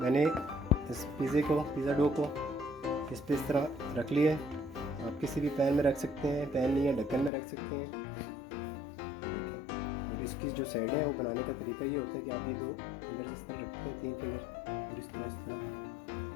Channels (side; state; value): right; drops out; at 7.3 s